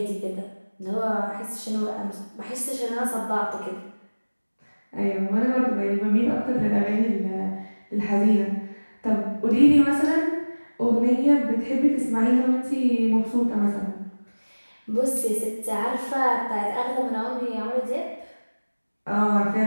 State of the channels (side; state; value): both; inverted; correlation -1.00